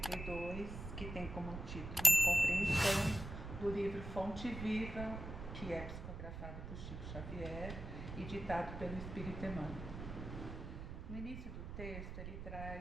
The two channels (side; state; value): right; noise; rumble, 8 dB below the sound